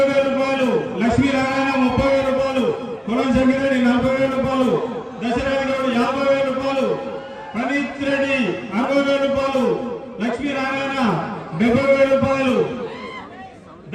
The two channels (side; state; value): both; identical; correlation 1.00